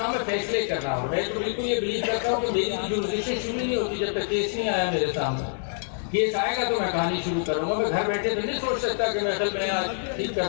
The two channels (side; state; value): right; silent; 61 dB below the other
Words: ہے فیصلے کرنا. اور میں تو بالکل یہ بلیو کرتا ہوں کہ میری جورسڈکشن شروع نہیں ہوتی جب تک کیس نہیں آیا میرے سامنے. کیس آئے گا تو میں کہانی شروع کروں گا. میں گھر بیٹھے تو نہیں سوچ سکتا کہ میں ٹھیک